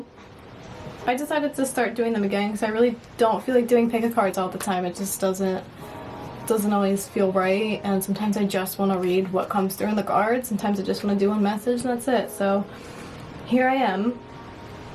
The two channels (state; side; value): identical; both; correlation 1.00